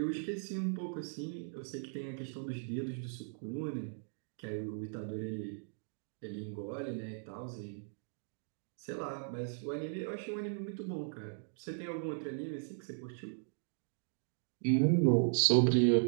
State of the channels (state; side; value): silent; left; digital silence